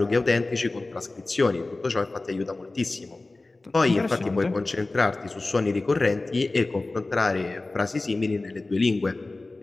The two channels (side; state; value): right; quieter; 3.2 dB